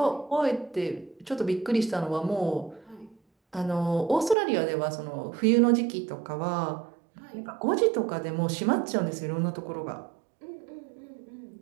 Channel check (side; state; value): left; drops out; at 4.4 s